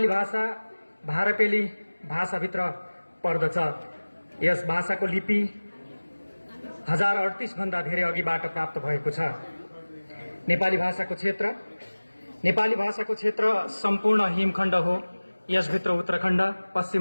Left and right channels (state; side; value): inverted; both; correlation -1.00